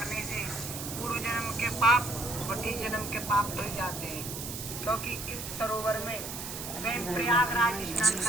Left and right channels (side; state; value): right; noise; hiss, 7 dB below the sound